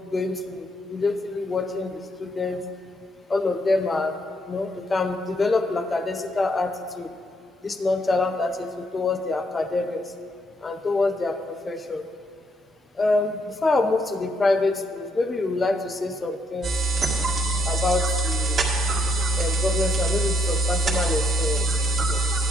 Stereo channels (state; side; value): normal; both; correlation 0.73